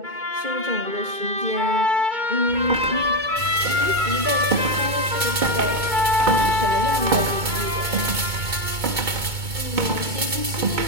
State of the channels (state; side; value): late; left; 2.2 ms